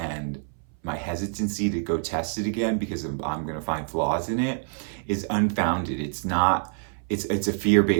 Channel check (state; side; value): silent; left; 59 dB below the other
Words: my hesitancy to go test it again because I'm going to find flaws in it is unfounded. It's not. It's a